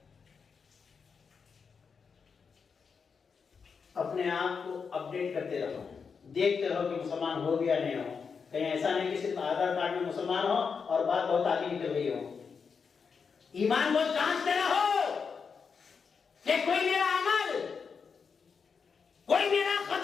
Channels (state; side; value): quieter; right; 5.7 dB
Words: अपने आप को अपडेट करते रहो, देखते रहो कि मुसलमान हो गया नहीं हो। कहीं ऐसा नहीं कि सिर्फ आधार कार्ड में मुसलमान हो और बात बहुत आगे निकल गई हो। ईमान को जांचते रहो कि कोई मेरा अमल, कोई मेरा